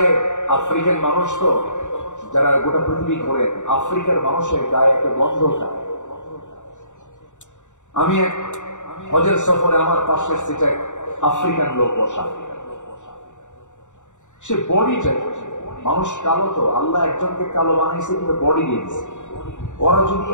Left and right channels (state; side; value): late; right; 0.85 ms